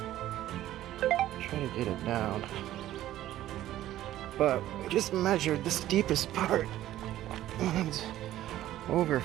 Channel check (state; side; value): quieter; left; 13.6 dB